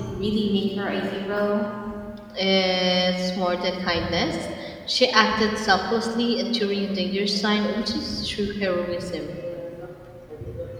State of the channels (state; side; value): identical; both; correlation 1.00